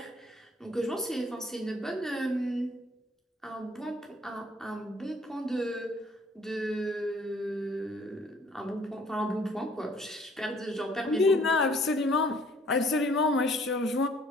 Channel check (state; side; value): normal; both; correlation 0.59